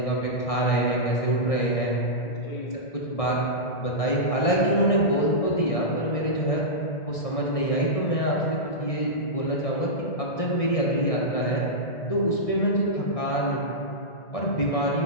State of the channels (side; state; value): right; late; 1.6 ms